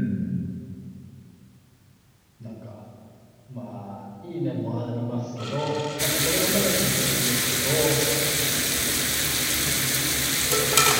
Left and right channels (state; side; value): identical; both; correlation 1.00